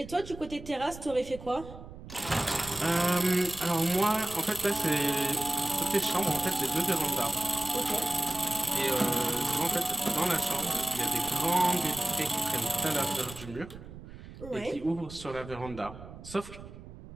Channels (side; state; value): right; noise; rumble, 15 dB below the sound